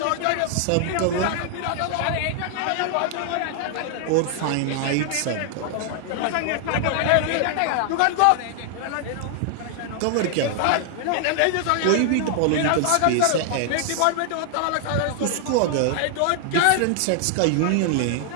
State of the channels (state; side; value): different; both; correlation 0.00